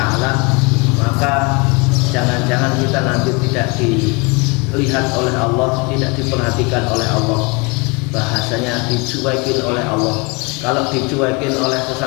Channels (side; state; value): right; quieter; 28.6 dB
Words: maka jangan-jangan kita nanti tidak dilihat oleh Allah, tidak diperhatikan oleh Allah, bahasanya dicuekin oleh Allah. Kalau dicuekin oleh